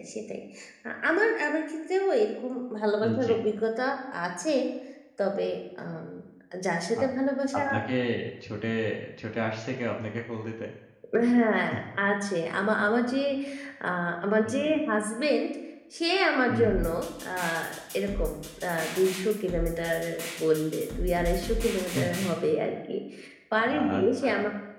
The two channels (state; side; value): identical; both; correlation 1.00